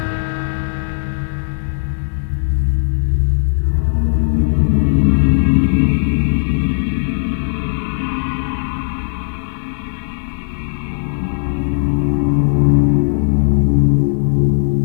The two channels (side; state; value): right; silent; digital silence